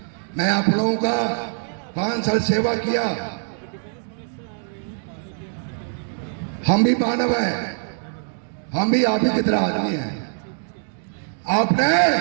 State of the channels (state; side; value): silent; left; digital silence